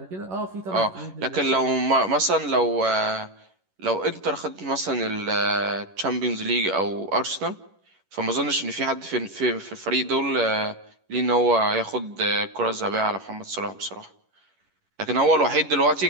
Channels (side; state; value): left; late; 11 ms